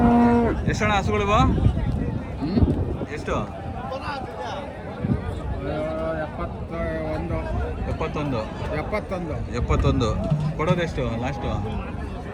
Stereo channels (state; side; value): identical; both; correlation 1.00